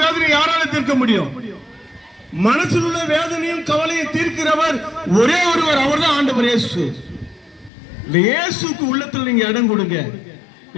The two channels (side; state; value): right; drops out; at 7.7 s